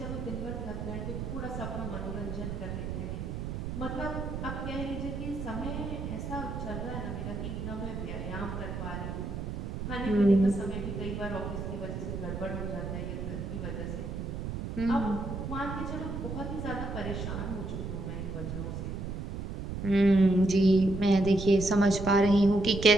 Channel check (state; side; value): noise; right; rumble, 5 dB below the sound